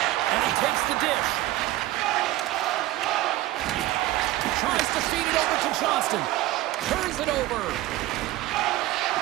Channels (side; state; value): left; quieter; 16.3 dB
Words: And he takes the dish. Tries to feed it over to Johnston. Turns it over.